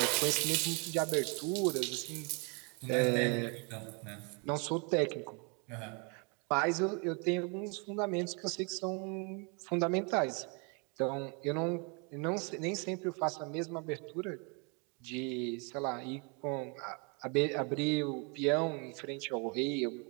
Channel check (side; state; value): left; quieter; 34.1 dB